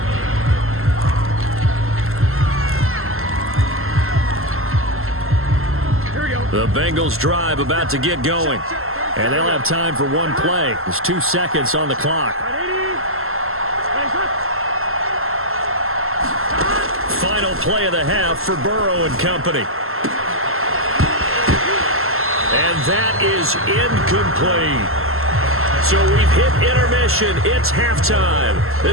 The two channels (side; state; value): left; late; 0.62 ms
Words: The Bengals drive about to get going. And they'll have time for one play. There's 2 seconds on the clock. Final play of the half for Burrow and company. And that is incomplete. So we've hit intermission. It's halftime.